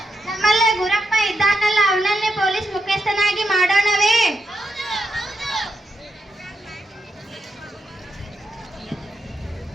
ನಮ್ಮಲ್ಲೇ ಗುರಪ್ಪ ಇದ್ದಾನಲ್ಲ, ಅವನನ್ನೇ ಪೊಲೀಸ್ ಮುಖ್ಯಸ್ಥನಾಗಿ ಮಾಡೋಣವೇ?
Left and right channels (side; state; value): both; normal; correlation 0.84